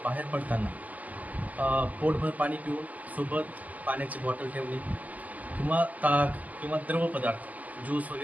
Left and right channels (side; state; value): left; late; 0.078 ms